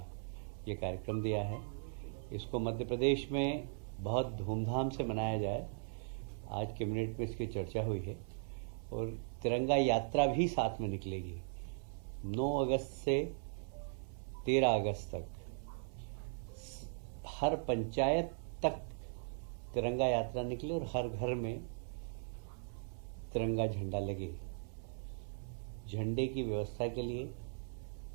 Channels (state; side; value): silent; left; 52 dB below the other